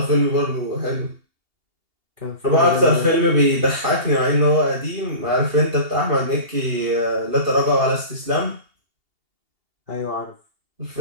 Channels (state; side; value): late; left; 2.8 ms